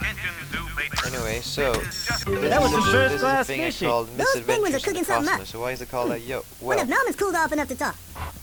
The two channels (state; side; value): identical; both; correlation 1.00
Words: Anyway, so That was some this first is a class thing I fishing. called Those penguins are Misadventures in the cooking something up. Cosmos. So why is it called that? Yo, What well, if Norman's cooled off enough to talk?